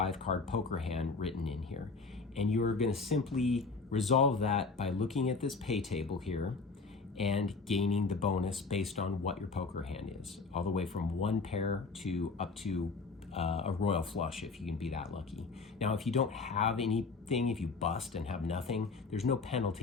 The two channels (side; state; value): right; quieter; 4.3 dB